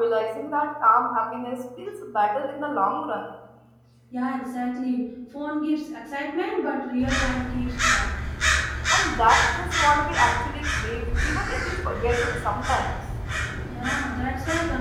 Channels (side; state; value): both; identical; correlation 1.00